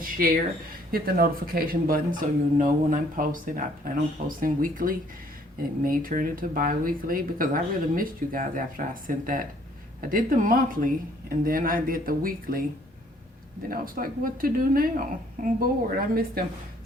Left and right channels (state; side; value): normal; both; correlation 0.62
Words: share. Hit the notification button so you'll know when I'm posting. I plan on posting weekly. It may turn into bi-weekly because I really missed you guys after I sent that. I did the monthly, and then I did the weekly. Then I was like, what to do now? I'm bored. I missed them.